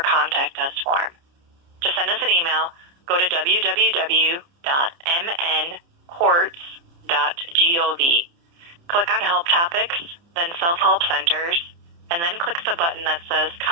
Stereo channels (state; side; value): late; left; 29 ms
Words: Contact Us form. To send us an email, go to www.mncourts.gov. Click on Help Topics, then Self-Help Centers, and then click the button that says